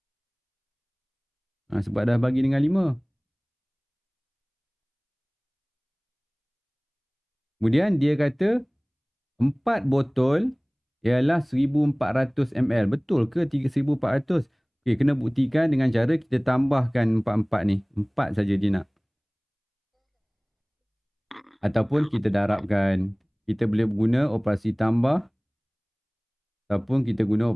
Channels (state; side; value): identical; both; correlation 1.00